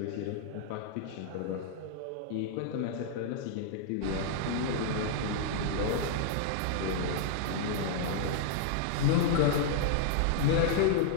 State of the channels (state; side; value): different; both; correlation -0.01